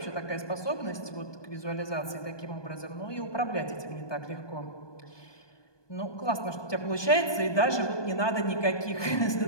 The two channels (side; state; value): right; late; 1.2 ms